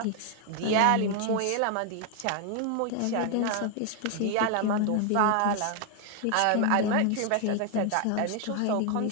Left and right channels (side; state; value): both; different; correlation 0.00